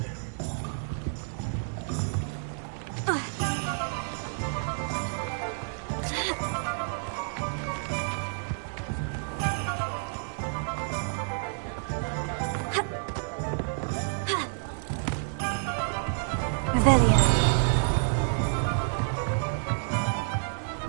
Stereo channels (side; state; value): left; silent; digital silence